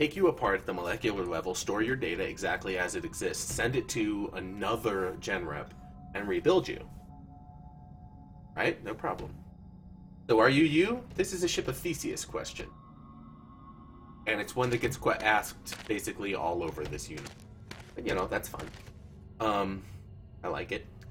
you apart at the molecular level, store your data exactly as it exists, send it to another gen rep, and rebuild you. Right? No problem. So are you you? This is a Ship of Theseus question. And it's one that gets asked basically all over this unit. But, you know, that's fun. I like it.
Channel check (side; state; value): both; identical; correlation 1.00